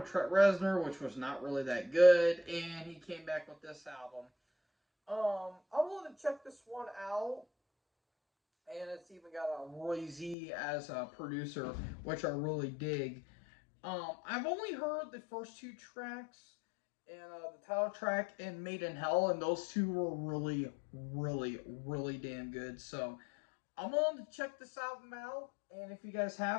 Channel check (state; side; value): drops out; right; at 10.4 s